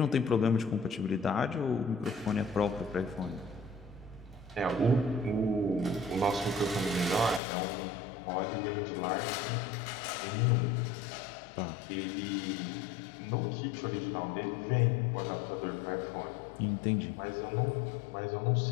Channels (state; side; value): drops out; right; at 7.4 s